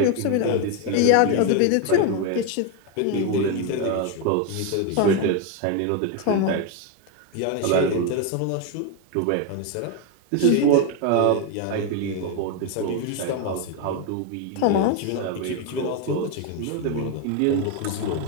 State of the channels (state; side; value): different; both; correlation 0.02